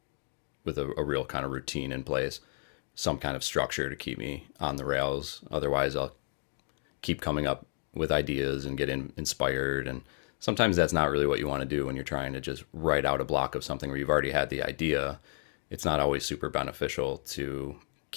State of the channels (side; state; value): right; silent; digital silence